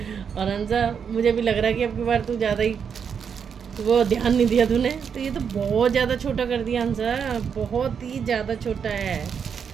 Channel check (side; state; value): left; quieter; 7.0 dB